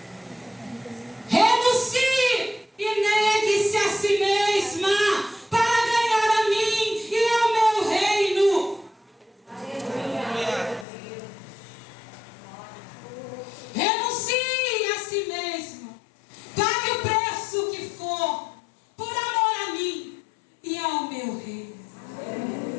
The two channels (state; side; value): drops out; right; at 10.9 s